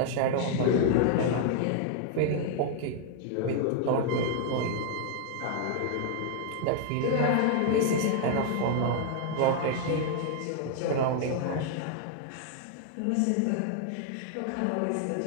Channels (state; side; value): different; both; correlation 0.00